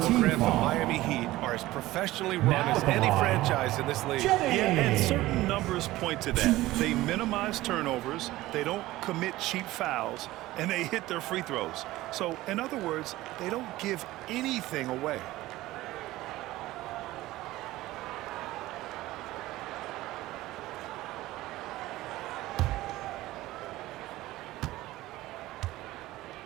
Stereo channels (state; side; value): quieter; left; 17.2 dB